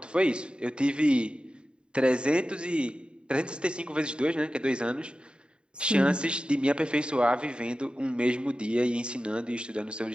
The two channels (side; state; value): left; late; 0.052 ms